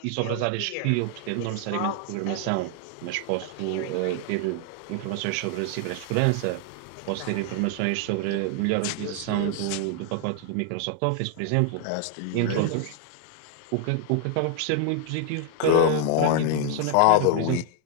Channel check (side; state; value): both; different; correlation 0.00